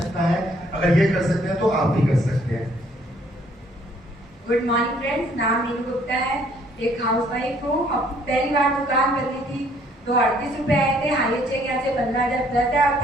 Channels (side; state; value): both; normal; correlation 0.63